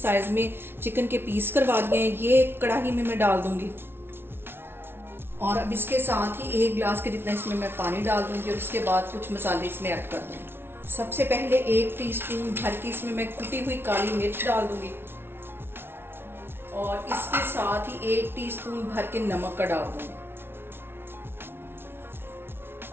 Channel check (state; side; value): late; left; 0.11 ms